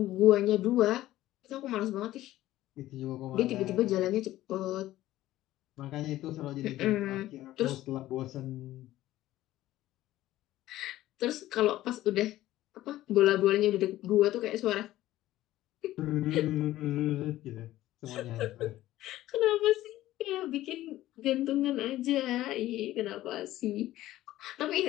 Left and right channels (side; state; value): right; quieter; 15.1 dB